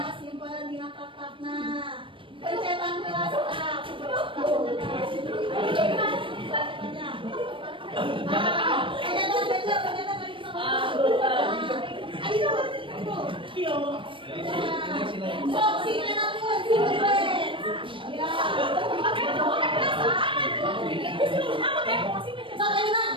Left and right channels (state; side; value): late; left; 0.25 ms